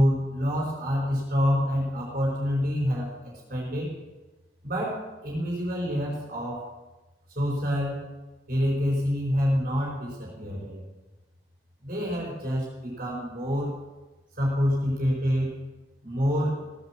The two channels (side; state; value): both; normal; correlation 0.85